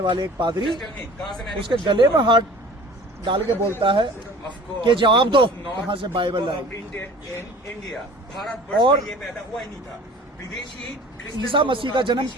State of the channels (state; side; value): normal; both; correlation 0.45